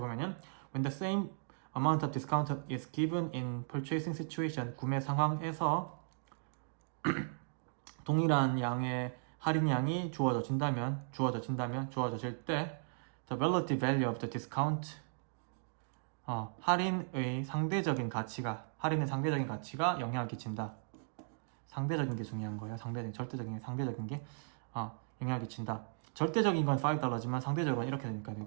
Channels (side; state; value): left; silent; digital silence